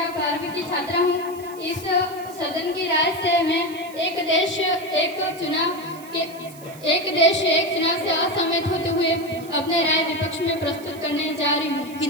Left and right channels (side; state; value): right; noise; hiss, 20 dB below the sound